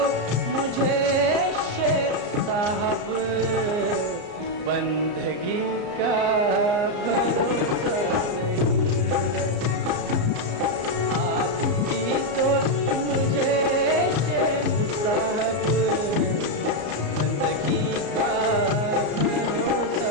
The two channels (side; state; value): left; late; 34 ms